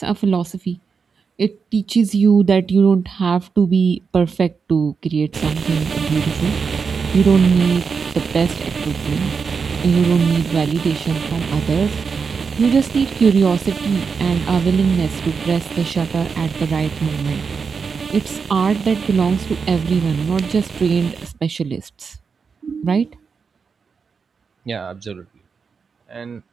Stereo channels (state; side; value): quieter; left; 5.5 dB